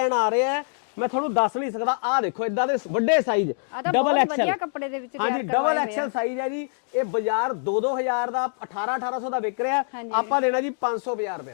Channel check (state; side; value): silent; right; digital silence